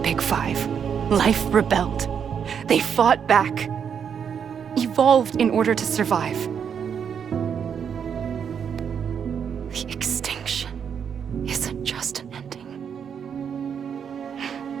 Five, life rebelled. They fought back, evolved in order to survive. The extinction isn't just an ending.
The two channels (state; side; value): quieter; left; 7.5 dB